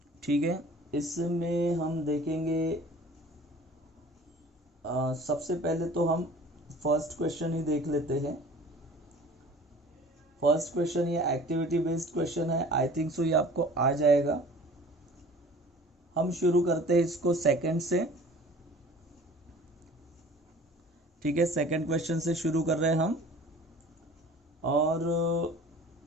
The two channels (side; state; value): both; normal; correlation 0.46